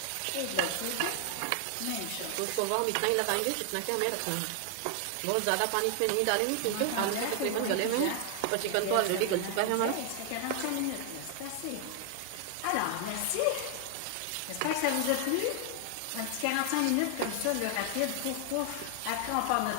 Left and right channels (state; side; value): different; both; correlation 0.00